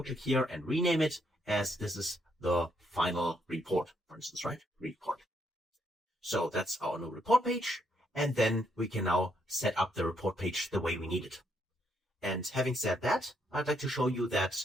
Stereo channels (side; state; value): both; normal; correlation 0.74